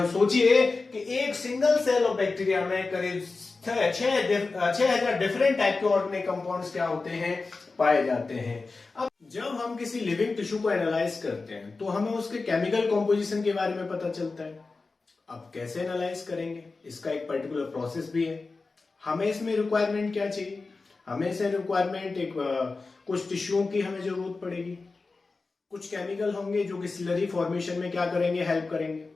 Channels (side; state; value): right; quieter; 3.9 dB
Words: सोचिए कि एक सिंगल सेल ऑफ बैक्टीरिया में करीब 6000 डिफरेंट टाइप के ऑर्गेनिक कंपाउंड्स क्या होते हैं, पाए जाते हैं। अब जब हम किसी लिविंग टिश्यू को एनालाइज करते हैं तो हमें उसके केमिकल कॉम्पोजिशन के बारे में पता चलता है। अब कैसे एनालाइज करेंगे, इसका एक पर्टिकुलर प्रोसेस भी है। हमें इसमें रिक्वायरमेंट क्या चाहिए, हमें इसे रिक्वायरमेंट एक कुछ टिश्यूओं की हमें जरूरत पड़ेगी, कुछ केमिकल होंगे जो कि स्लरी फॉर्मेशन में क्या करेंगे, हेल्प करेंगे।